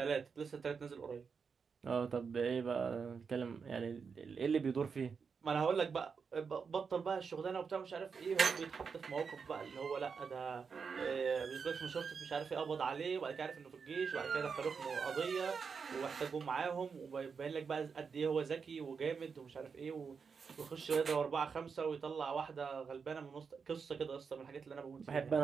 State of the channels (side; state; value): left; quieter; 5.7 dB